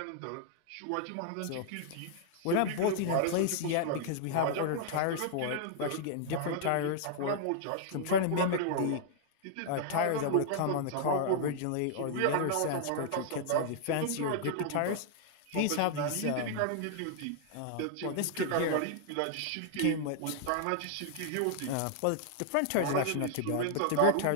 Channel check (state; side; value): different; both; correlation -0.01